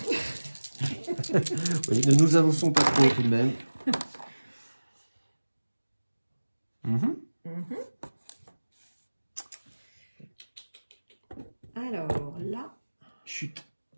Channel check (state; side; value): inverted; both; correlation -1.00